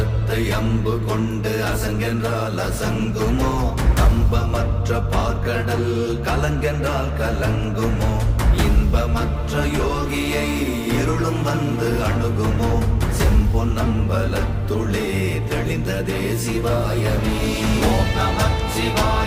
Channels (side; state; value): both; identical; correlation 1.00